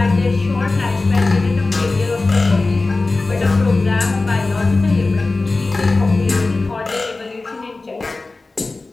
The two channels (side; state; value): right; quieter; 3.4 dB